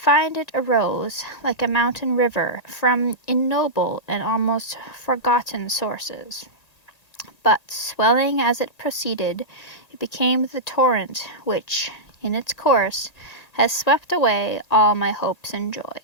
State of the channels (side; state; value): right; late; 1.8 ms